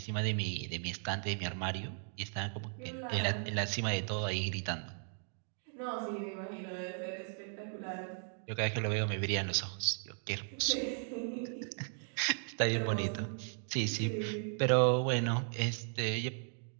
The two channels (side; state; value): left; silent; 53 dB below the other